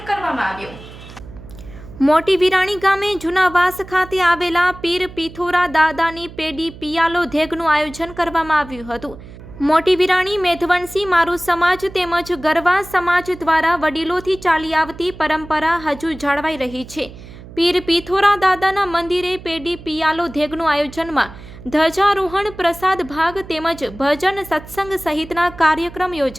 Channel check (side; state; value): right; noise; hum, 17 dB below the sound